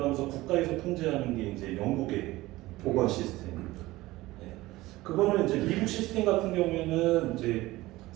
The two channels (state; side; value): quieter; left; 18.5 dB